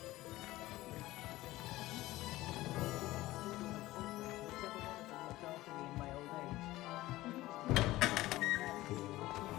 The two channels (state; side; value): quieter; right; 17.4 dB